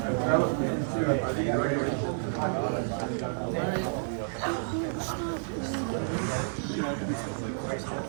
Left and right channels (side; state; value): left; silent; 58 dB below the other